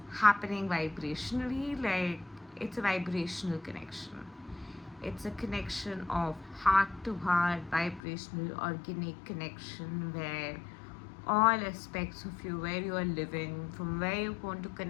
happening vibrationally. Like, it's a vibrational connection. It's a connection of heart to heart, vibrational, organic connection, where all aspects of you, where you are living, from where you want to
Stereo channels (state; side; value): drops out; right; at 8.0 s